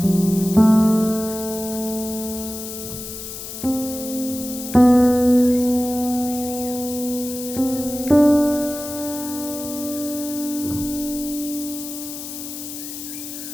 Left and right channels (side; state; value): left; noise; hiss, 9 dB below the sound